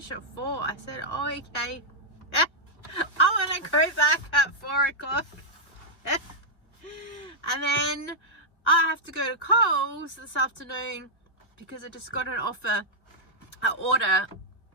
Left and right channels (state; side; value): late; right; 1.9 ms